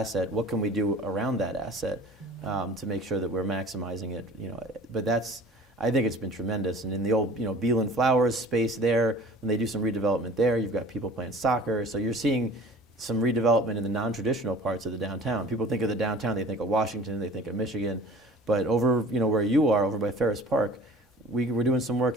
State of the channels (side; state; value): both; normal; correlation 0.45